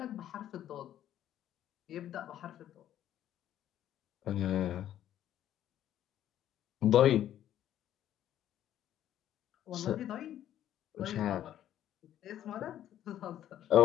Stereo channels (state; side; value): quieter; right; 11.5 dB